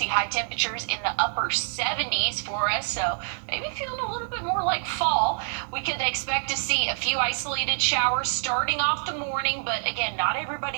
high temperatures in the upper 70s for us, so maybe feeling a little bit more like fall. We could expect to see a few isolated showers starting off the morning, but again, not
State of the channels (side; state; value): left; silent; 61 dB below the other